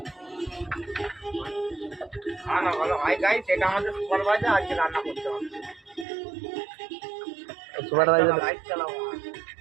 ভালো ভাই গাই, সেটা আমাদের সুপারভাইজার আজকে রান্না করতে হবে। সুপারভাইজার লাইট চালাও।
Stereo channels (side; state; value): left; drops out; at 6.1 s